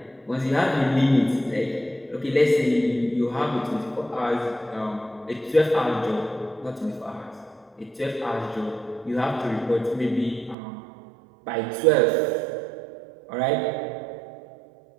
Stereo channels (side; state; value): left; drops out; at 10.6 s